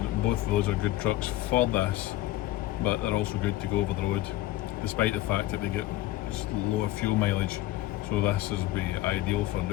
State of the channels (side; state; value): right; quieter; 15.9 dB